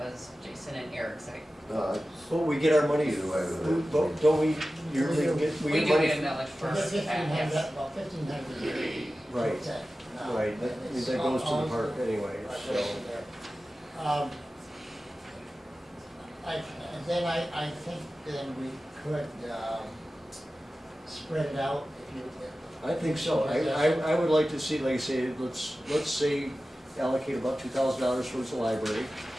was Jason and Eric side. But we get our money, Either way with it. don't we usually get, We we do get money? get a millage for for $1,500, that. well, $1,500 a year. Right. That's it. No, Right, that and it's that goes to all- the park anyway, Right, so. goes to there. And then I think then we could, spread it out if you. I think so. I would like to see, like I say, let's say allocate about $2,000 towards the library,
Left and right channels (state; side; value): normal; both; correlation 0.95